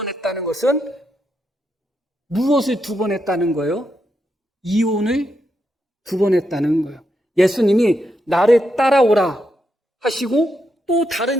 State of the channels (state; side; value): normal; both; correlation 0.83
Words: 것은 무엇을 2번 했다는 거예요? 이혼을 2번 했다는 거예요. 예수님이 나를 따라오라 하시고 또 다른